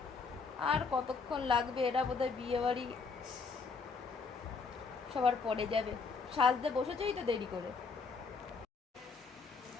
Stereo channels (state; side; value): quieter; right; 4.8 dB